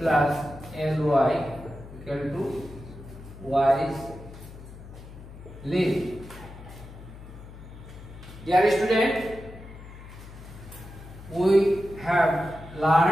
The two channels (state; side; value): noise; left; hum, 16 dB below the sound